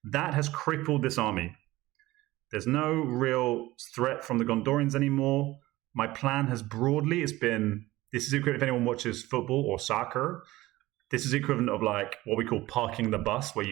That has crippled this army. There's no real threat from the Gondorians anymore. My plan has broadly, this is equivalent, if anyone watches football or soccer, this is equivalent of like what we call parking the bus, where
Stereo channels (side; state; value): left; quieter; 17.9 dB